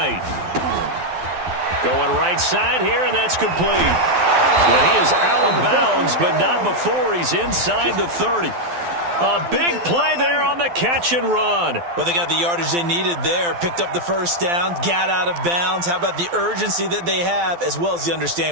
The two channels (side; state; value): left; late; 12 ms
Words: Going right side here, and that's complete. And he is out of bounds, but not before he's inside the 30. A big play there on the catch and run. Well, they got the yardage they needed there, picked up the first down, got out of bounds. How about the urgency that they have, as well as the